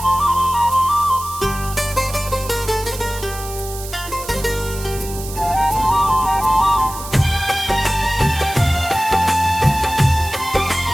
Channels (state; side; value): noise; right; hiss, 12 dB below the sound